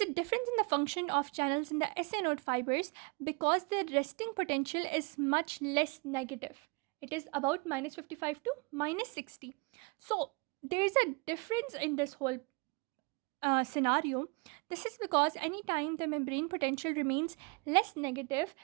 difference in the function of channels in the SA node fibers because the resting potential is much less negative. It is about minus 55 to minus 60. So there is a difference in this whole scenario. This is because anytime the membrane potential remains less negative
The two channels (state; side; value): quieter; left; 30.5 dB